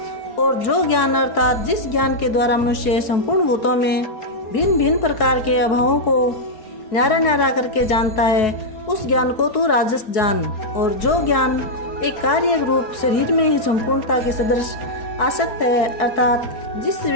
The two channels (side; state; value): right; late; 4.7 ms